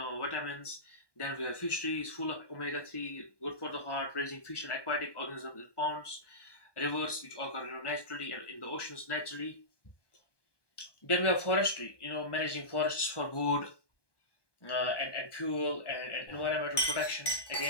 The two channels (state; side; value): late; right; 1.2 ms